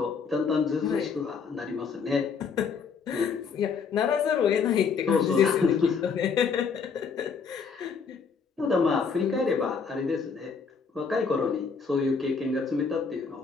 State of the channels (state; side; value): quieter; right; 5.6 dB